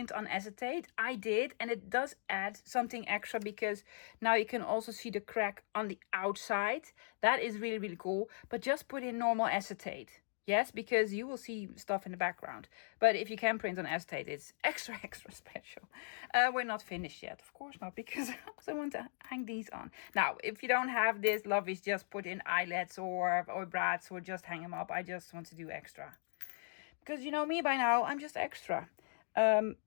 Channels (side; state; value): right; silent; digital silence